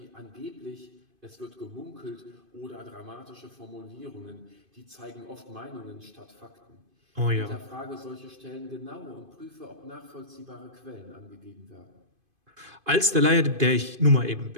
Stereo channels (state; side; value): late; left; 2.5 ms